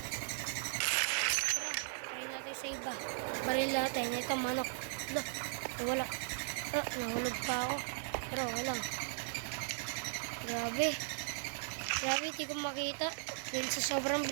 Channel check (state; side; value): silent; left; 53 dB below the other